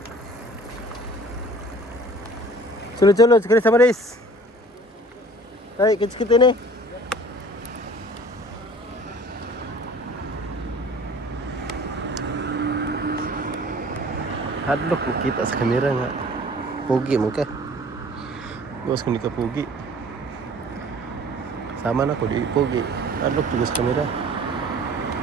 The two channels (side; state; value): both; normal; correlation 0.49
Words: Sulod-sulod, sekali sama Riz. Ay, kits-kit ini. Hadlock kita sa kamera nga. Pogi mo ka. Bukas ko ni ka pogi. Sama na ko di pogi. Hadlock juga sa kamera.